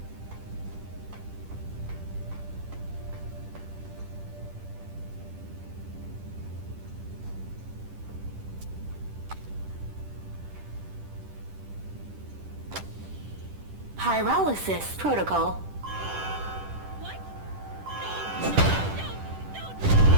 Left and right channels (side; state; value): left; late; 10 ms